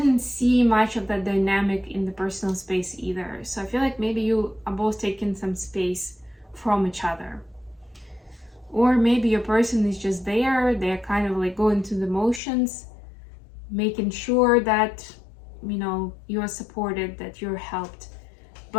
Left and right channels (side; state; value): right; drops out; at 12.4 s